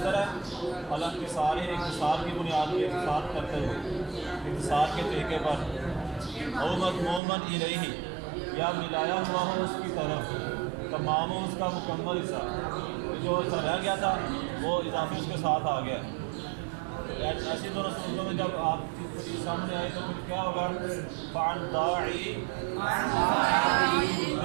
اختصار کی بنیاد پہ اختصار کرتے ہوئے اختصار کے طریقے پر او مضموماً الیہ یا ملایا ہوا ہو اس کی طرف تمام اس کا مکمل حصہ، جو حصہ رہ گیا تھا وہ اضافی اس کے ساتھ آ گیا۔ ایسی دونوں صورتوں میں جب آپ کی سامنے آئے تو پھر کیا ہوگا؟ فعن داعی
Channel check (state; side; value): drops out; left; at 7.2 s